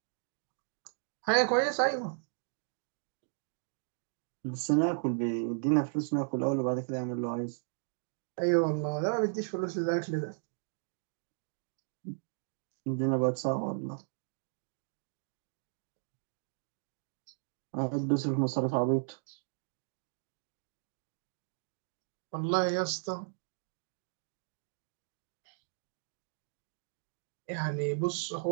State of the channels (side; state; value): left; silent; digital silence